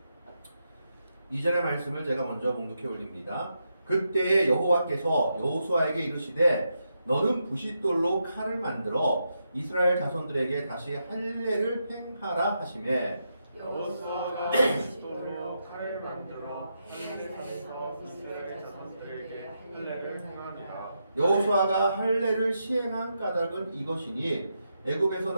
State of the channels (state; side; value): inverted; both; correlation -0.84